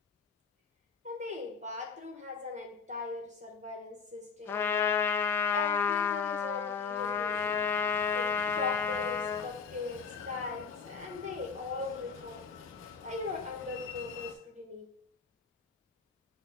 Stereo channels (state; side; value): quieter; right; 5.6 dB